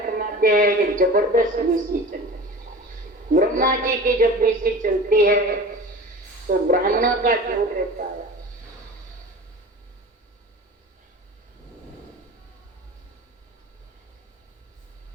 हैं ये जबरदस्त विषय चलती है। ब्रह्मा जी की जब विषय चलती है तो ब्राह्मणों का जोर रहता है।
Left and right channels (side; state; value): both; normal; correlation 0.37